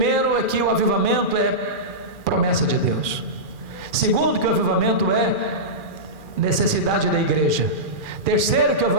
é que o avivamento é promessa de Deus. Segundo, que o avivamento é necessidade da igreja. Terceiro, que o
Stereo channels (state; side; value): late; left; 2.4 ms